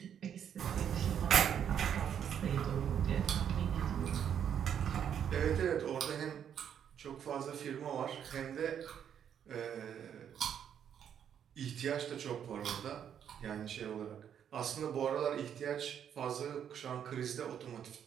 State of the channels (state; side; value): quieter; left; 8.8 dB